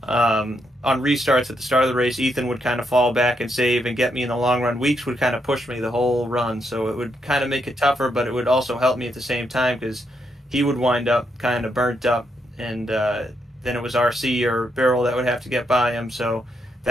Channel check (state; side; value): normal; both; correlation 0.79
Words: On restarts at the start of the race, Ethan would kind of fall back and save and get me in the long run. Weeks would kind of push me the whole run, so it would kind of make it tougher, but it would also help me at the same time because he would wind up kind of burnt up, and then it was RC or Beryl that would have to get by him, so